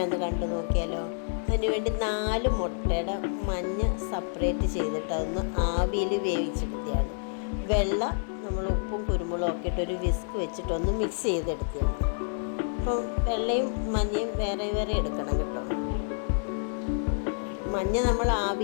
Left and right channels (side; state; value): right; silent; 59 dB below the other